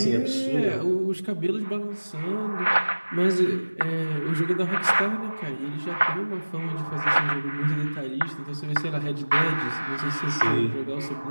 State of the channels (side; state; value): both; inverted; correlation -1.00